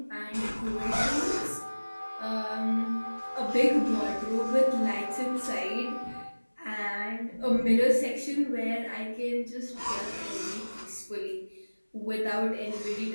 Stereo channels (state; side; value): inverted; both; correlation -1.00